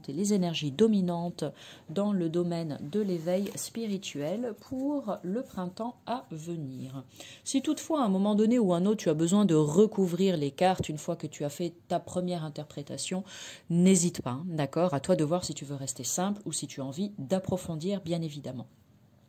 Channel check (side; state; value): both; identical; correlation 1.00